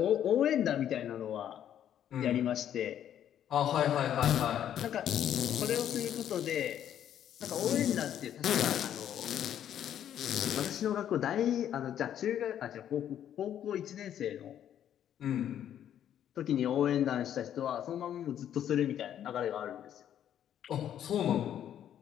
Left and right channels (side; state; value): right; quieter; 10.3 dB